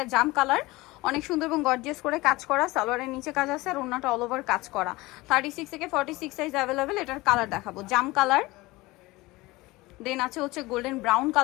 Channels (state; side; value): quieter; right; 20.9 dB